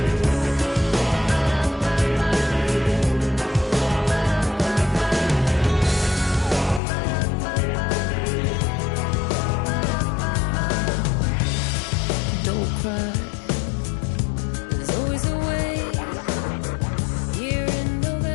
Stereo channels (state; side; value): drops out; right; at 6.8 s